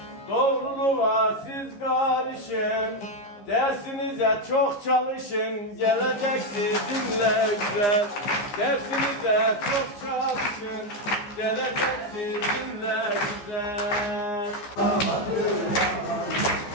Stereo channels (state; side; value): late; right; 15 ms